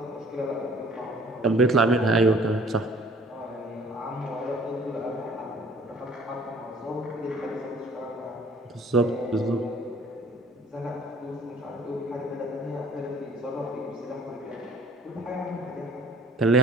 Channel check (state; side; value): normal; both; correlation 0.54